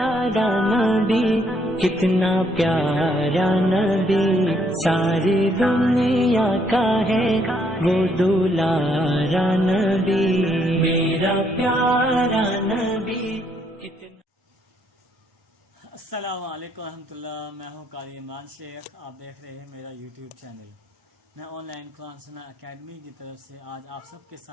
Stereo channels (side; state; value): both; normal; correlation 0.71